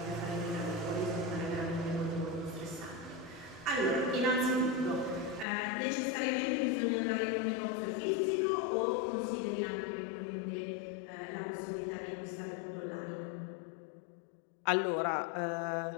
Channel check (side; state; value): right; drops out; at 5.5 s